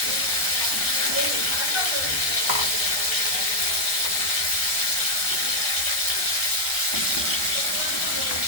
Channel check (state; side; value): late; right; 1.2 ms